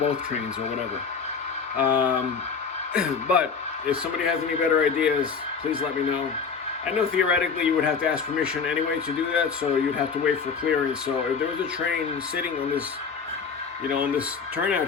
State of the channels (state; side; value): quieter; right; 5.6 dB